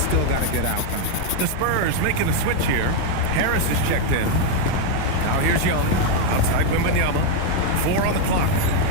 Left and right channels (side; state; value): both; different; correlation 0.01